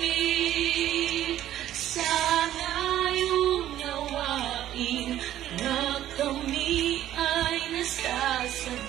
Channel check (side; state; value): left; quieter; 12.5 dB